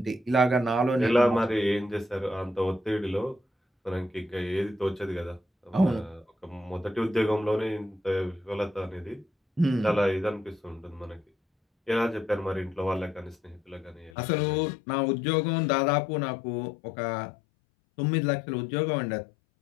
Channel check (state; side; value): drops out; right; at 14.2 s